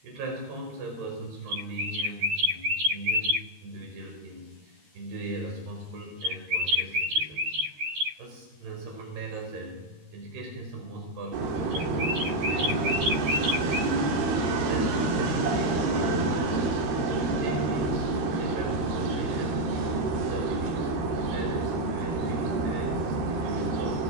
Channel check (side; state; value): left; late; 13 ms